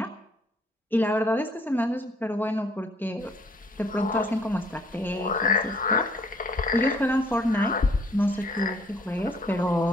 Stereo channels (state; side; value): normal; both; correlation 0.62